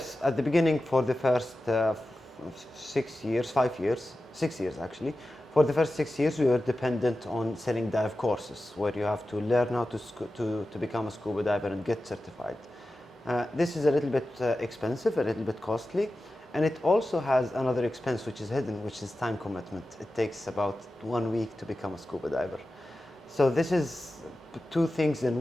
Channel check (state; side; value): normal; both; correlation 0.93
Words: at the beginning for the first 6 years, 5 years, 6 years actually. For the first 6 years, we were dependent on selling dive courses, where you have to learn how to become a scuba diver and get certified. This is a little bit expensive, a little bit costly, and it also has another expense which is hidden, which is time commitment. It takes about 1 week to become a scuba diver. So this is two things in